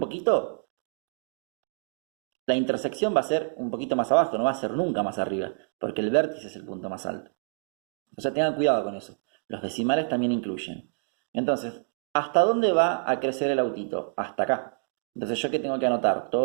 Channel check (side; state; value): left; silent; digital silence